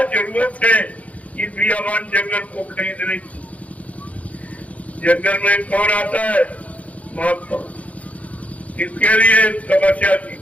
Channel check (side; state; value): right; late; 0.067 ms